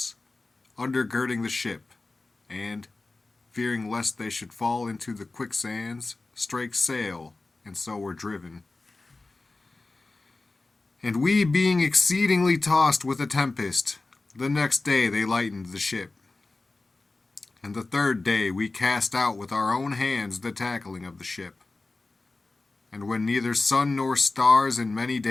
undergirding the ship, and, fearing lest they should fall into the quicksands, strake sail, and so were driven. And we being exceedingly tossed with a tempest, the next day they lightened the ship. And the third day we cast out with our own hands the tackling of the ship. And when neither sun nor stars in many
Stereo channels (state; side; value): quieter; right; 3.4 dB